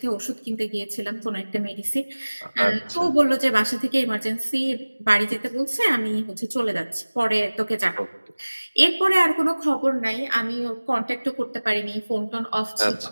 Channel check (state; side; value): inverted; both; correlation -1.00